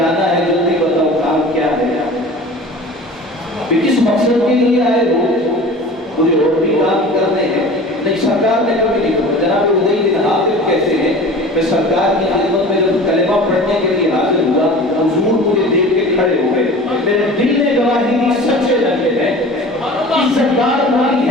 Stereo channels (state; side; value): normal; both; correlation 0.40